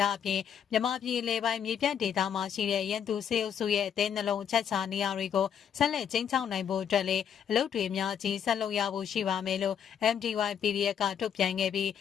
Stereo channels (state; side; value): quieter; right; 8.3 dB